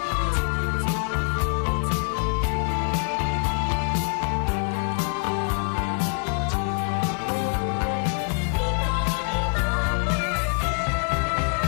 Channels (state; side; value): quieter; right; 39.8 dB